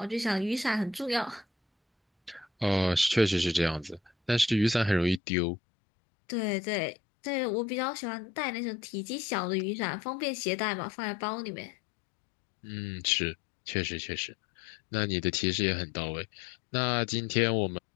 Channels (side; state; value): right; drops out; at 5.2 s